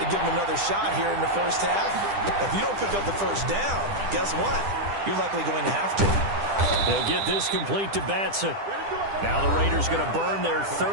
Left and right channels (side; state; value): left; late; 10 ms